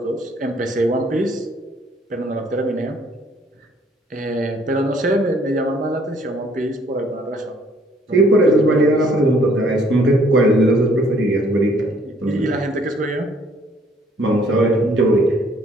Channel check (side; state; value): both; normal; correlation 0.62